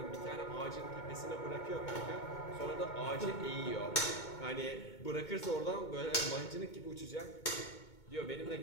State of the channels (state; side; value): late; right; 2.2 ms